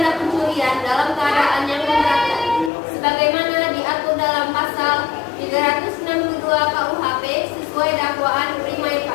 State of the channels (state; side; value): drops out; right; at 2.7 s